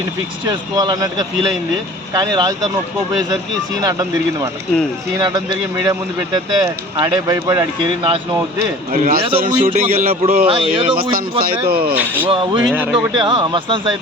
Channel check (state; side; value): normal; both; correlation 0.44